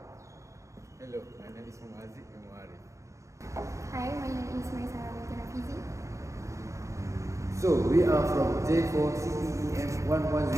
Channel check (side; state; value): left; late; 0.15 ms